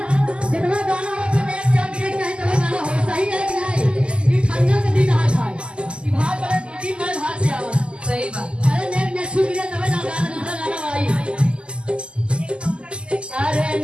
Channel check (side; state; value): left; late; 0.051 ms